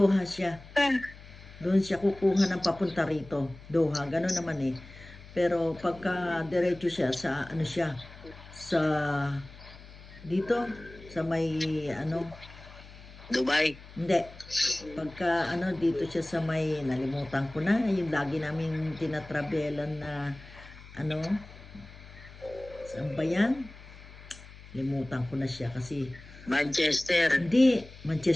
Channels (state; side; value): noise; left; hum, 18 dB below the sound